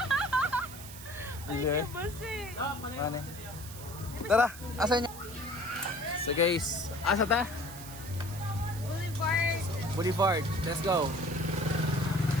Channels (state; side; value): noise; right; hiss, 14 dB below the sound